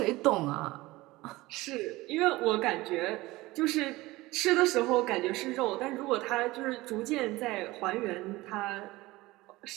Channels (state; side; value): quieter; left; 19.8 dB